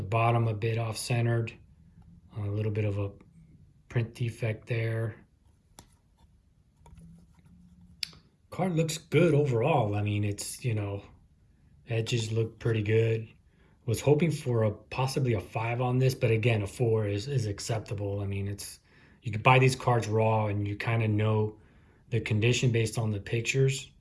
bottom a bit off centered. A little bit of a print defect there. Card looks good overall. I mean, it's, edges look pretty good. Was hoping for possibly a 5 on this, but again, a 4 is acceptable. I mean, you could buy these cards raw and you kind of know the condition based on the pictures.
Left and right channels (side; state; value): both; identical; correlation 1.00